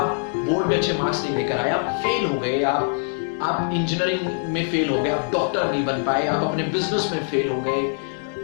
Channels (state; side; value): silent; right; 63 dB below the other